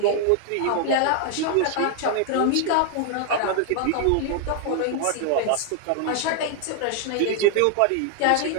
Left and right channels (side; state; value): both; different; correlation 0.00